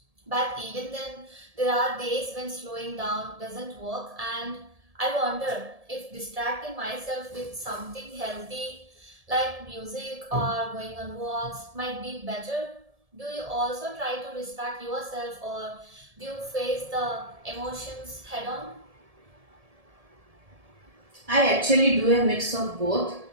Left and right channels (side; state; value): left; late; 1.7 ms